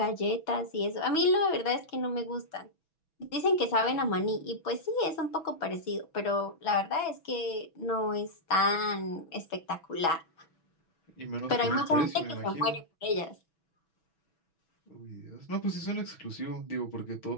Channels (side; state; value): right; late; 6.1 ms